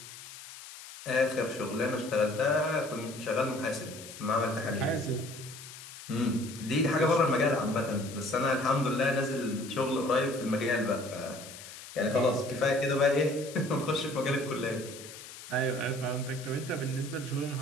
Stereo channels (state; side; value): noise; left; hiss, 14 dB below the sound